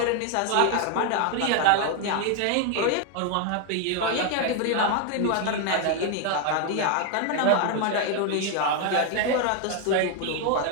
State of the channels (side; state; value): both; different; correlation 0.01